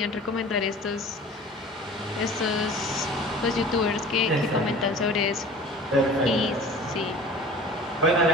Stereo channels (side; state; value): both; normal; correlation 0.43